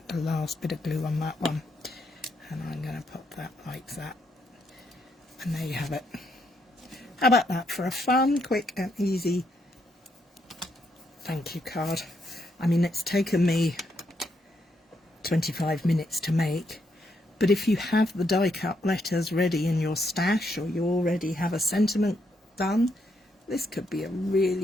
The last bit of glue on that one. And I'm going to put that like that. And there you have it. How about that for a fun, quick and easy thank you card? I mean, it's taken me 25 minutes to make. But if you have the die cut letters ready in your stash, or you already have a sentiment done, this could be a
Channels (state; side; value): normal; both; correlation 0.77